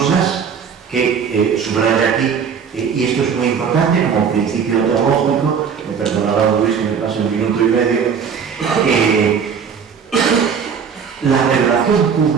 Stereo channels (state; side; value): quieter; left; 6.7 dB